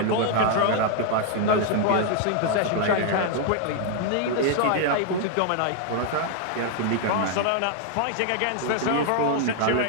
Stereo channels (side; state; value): both; different; correlation 0.00